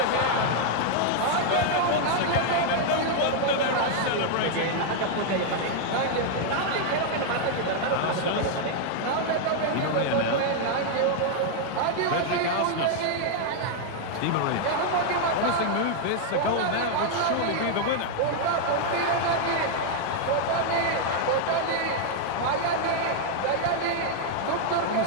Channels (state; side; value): different; both; correlation 0.00